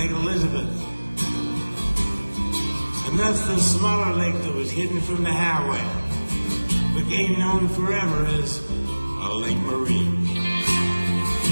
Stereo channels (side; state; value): both; inverted; correlation -1.00